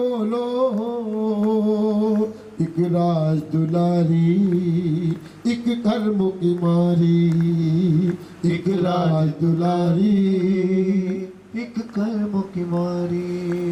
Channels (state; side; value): identical; both; correlation 1.00